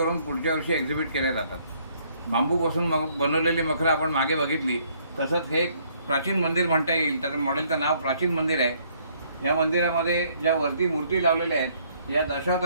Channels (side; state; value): both; inverted; correlation -0.65